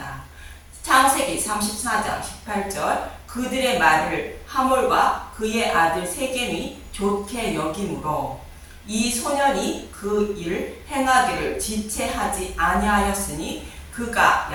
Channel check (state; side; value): identical; both; correlation 1.00